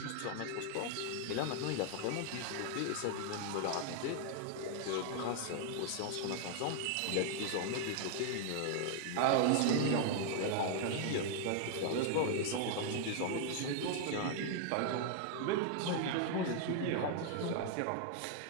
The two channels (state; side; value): different; both; correlation 0.00